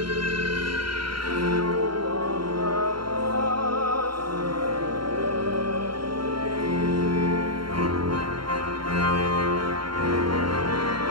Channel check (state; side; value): late; left; 0.73 ms